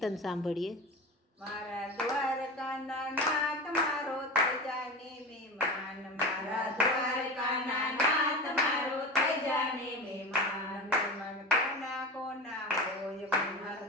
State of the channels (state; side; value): normal; both; correlation 0.27